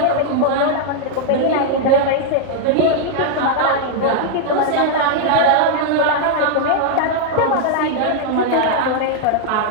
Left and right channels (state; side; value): different; both; correlation -0.01